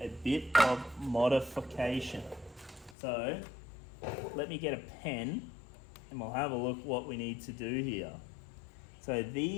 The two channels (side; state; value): right; drops out; at 3.0 s